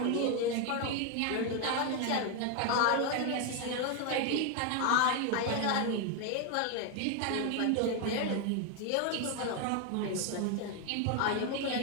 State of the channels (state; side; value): different; both; correlation 0.01